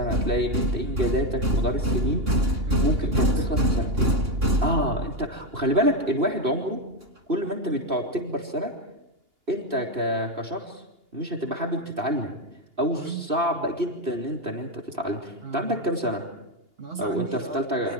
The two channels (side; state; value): left; late; 2.8 ms